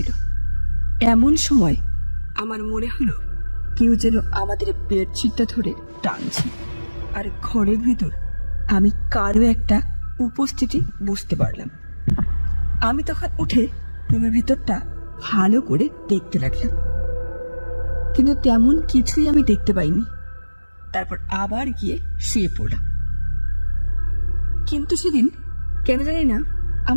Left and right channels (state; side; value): inverted; both; correlation -1.00